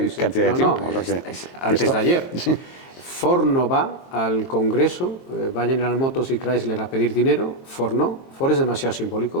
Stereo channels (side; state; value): right; late; 22 ms